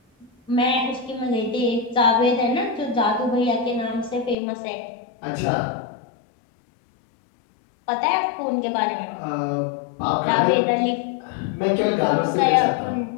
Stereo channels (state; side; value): drops out; right; at 4.4 s